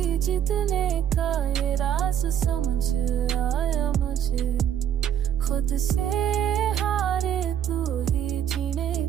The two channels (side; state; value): left; quieter; 9.6 dB